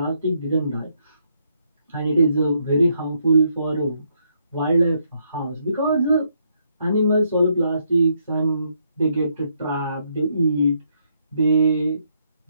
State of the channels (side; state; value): both; inverted; correlation -0.75